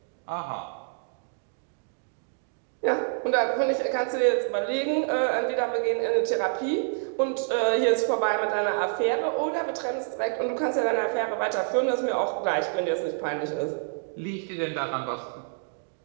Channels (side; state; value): left; silent; digital silence